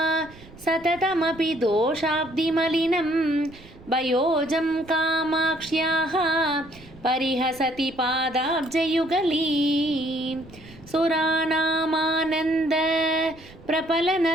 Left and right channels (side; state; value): right; noise; rumble, 21 dB below the sound